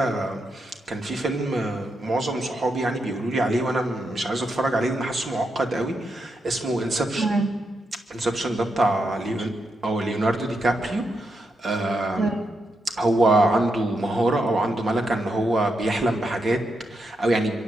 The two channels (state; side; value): normal; both; correlation 0.83